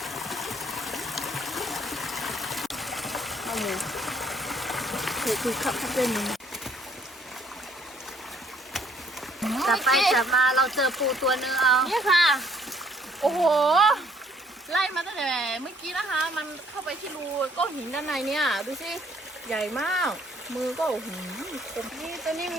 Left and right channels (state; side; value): normal; both; correlation 0.63